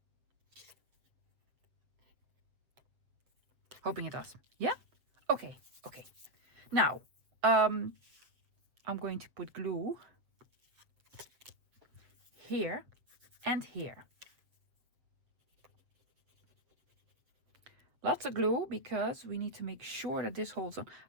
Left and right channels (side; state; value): left; late; 7.4 ms